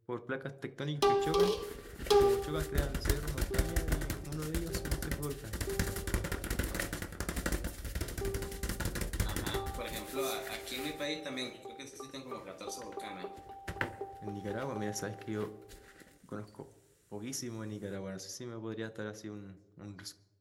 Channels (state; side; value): identical; both; correlation 1.00